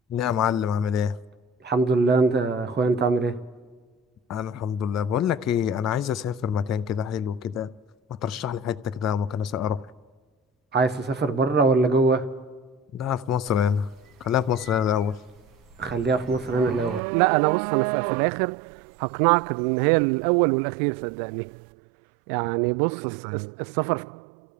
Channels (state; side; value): drops out; left; at 17.0 s